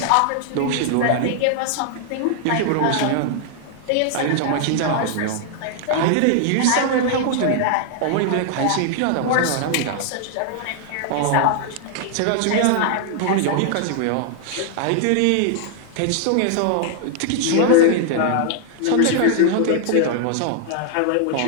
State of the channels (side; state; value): both; different; correlation 0.00